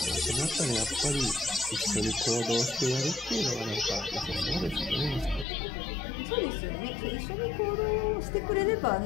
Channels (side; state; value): right; drops out; at 5.5 s